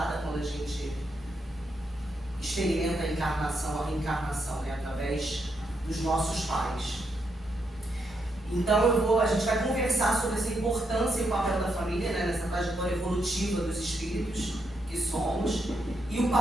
quando a gente experimenta a encarnação, a reencarnação, né? Através dos nossos pais. Então a gente vai conversar sobre essa importância e o papel da família, né, nessa trajetória evolutiva dos espíritos que somos, e o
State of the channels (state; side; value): normal; both; correlation 0.80